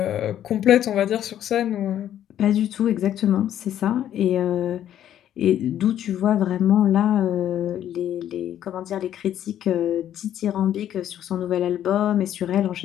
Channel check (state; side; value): quieter; right; 11.0 dB